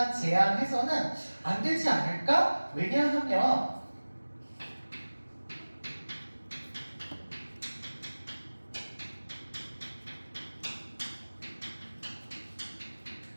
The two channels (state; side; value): inverted; both; correlation -1.00